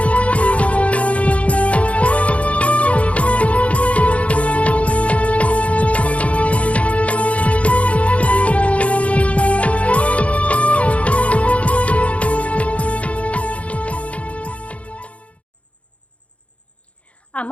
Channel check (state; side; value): late; right; 0.064 ms